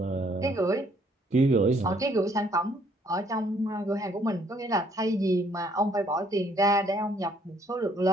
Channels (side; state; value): both; normal; correlation 0.65